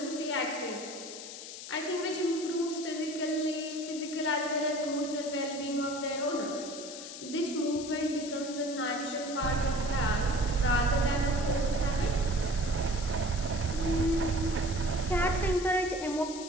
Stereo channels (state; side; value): noise; left; hiss, 11 dB below the sound